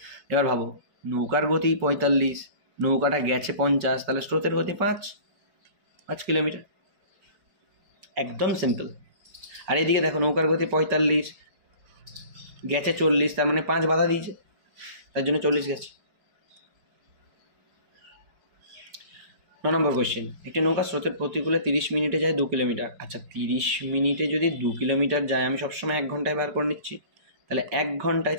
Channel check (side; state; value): left; late; 5.2 ms